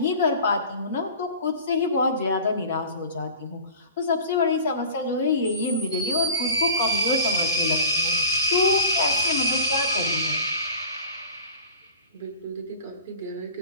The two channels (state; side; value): inverted; both; correlation -0.40